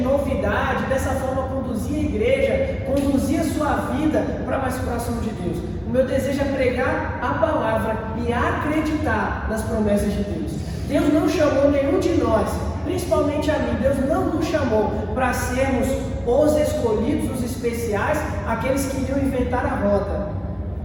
dessa forma conduzir a igreja, conduzir a sua vida para mais próximo de Deus. O meu desejo é pregar a palavra e acreditar nas promessas de Deus. Deus não chamou nenhum de nós, principalmente a mim, Deus não nos chamou para sermos os escolhidos, os especiais, aqueles que iriam inventar a roda.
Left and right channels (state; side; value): identical; both; correlation 1.00